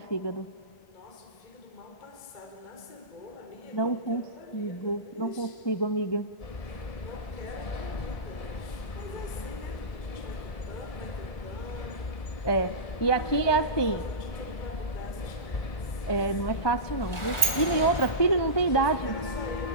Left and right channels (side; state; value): right; late; 1.4 ms